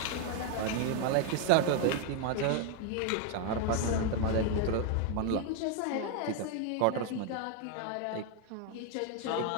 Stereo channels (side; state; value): both; different; correlation 0.01